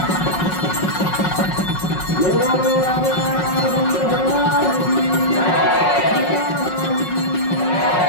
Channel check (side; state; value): right; late; 5.5 ms